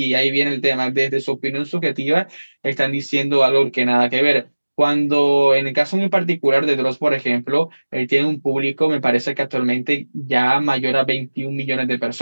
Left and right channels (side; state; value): both; inverted; correlation -1.00